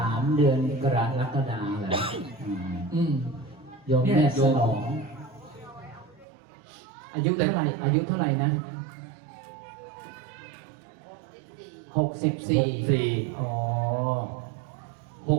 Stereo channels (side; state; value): left; drops out; at 6.2 s